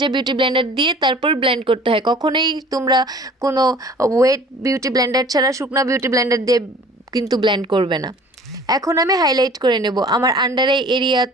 বিউটি ব্লেন্ডার দিয়ে তারপর ব্লেন্ড করতে হয়। কখনোই তোমরা কোনো ওয়েট বিউটি ব্লেন্ডার ছাড়া শুকনো বিউটি ব্লেন্ডার দিয়ে কিন্তু ব্লেন্ড করবে না। এখন আমি হাইলাইট করে নেব আমার আন্ডার আই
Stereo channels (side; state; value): both; normal; correlation 0.48